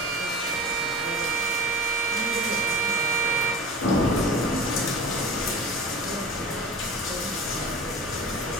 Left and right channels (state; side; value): normal; both; correlation 0.34